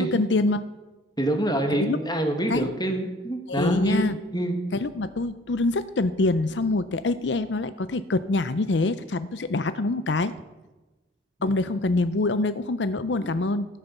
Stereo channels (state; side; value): normal; both; correlation 0.50